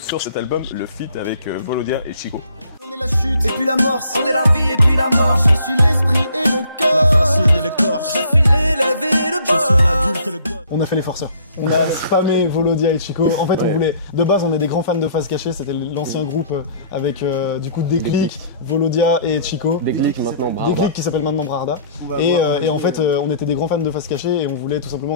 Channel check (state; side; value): inverted; both; correlation -0.58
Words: cet album le feat avec Volodia et Chico? On est la chute, et puis l'amorce. On est la vie et puis la mort. Je suis l'esprit et le cœur. La racine et l'écorce. Je suis l'élève et le boss. Je suis l'adulte et le gosse. On a fait les forceurs. On a spammé Volodia et Chico. En fait, on voulait. De base, on est des grands fans de Face Cachée. C'était l'ancien groupe avec du coup Déclic, Volodia et Chico. Déclic maintenant, Brarda. Déclic qui s'appelle maintenant Brarda. Et en fait, on était des grands fans de Face Cachée et on voulait tout